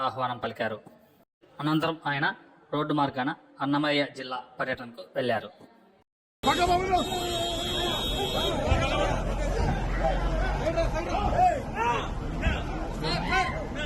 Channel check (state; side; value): identical; both; correlation 1.00